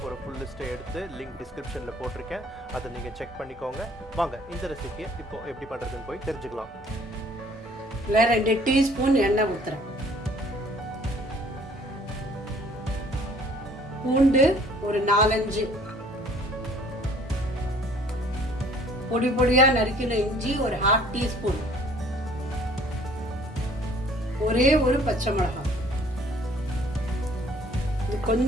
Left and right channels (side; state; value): both; normal; correlation 0.56